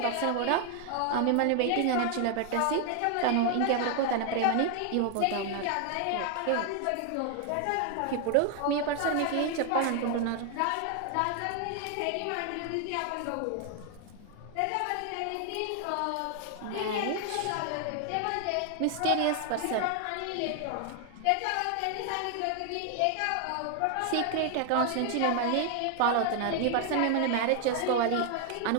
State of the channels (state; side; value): different; both; correlation 0.00